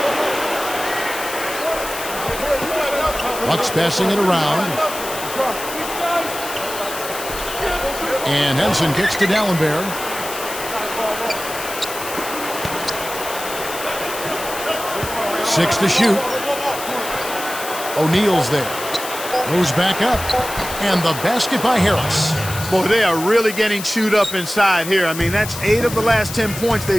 Bucks passing it around. And Henson kicks to Dallenberg. Six to shoot. O'Neal's there. Goes back up. And the basket by Harris. Boy, they are really getting chewed up inside here. I mean, that's 8 of the last 10 points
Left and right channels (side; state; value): left; noise; hiss, 9 dB below the sound